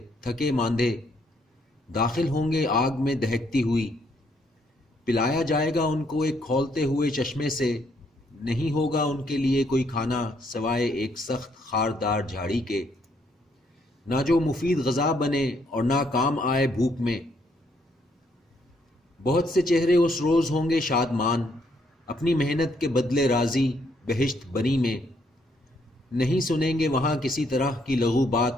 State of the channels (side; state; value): both; normal; correlation 0.72